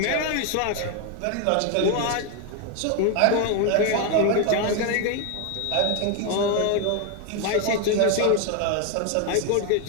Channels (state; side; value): different; both; correlation 0.01